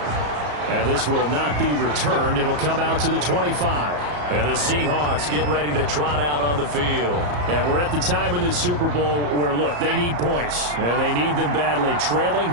And this will not be returned. It'll come out to the 25. And the Seahawks get ready to trot out on the field. And we're at the time in this Super Bowl where, look, they need points. And they need them badly. Trailing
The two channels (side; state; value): left; late; 34 ms